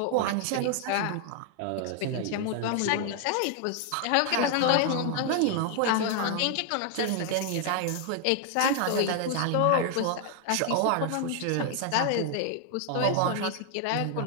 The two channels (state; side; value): different; both; correlation 0.00